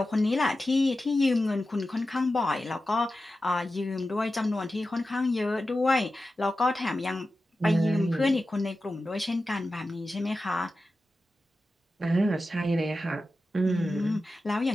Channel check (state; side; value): normal; both; correlation 0.93